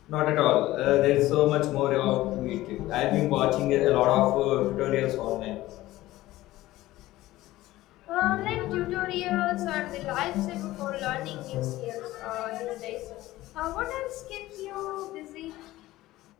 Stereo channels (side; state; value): right; quieter; 16.7 dB